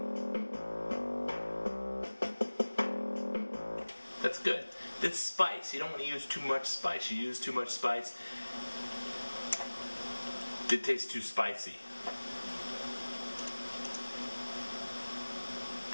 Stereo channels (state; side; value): inverted; both; correlation -1.00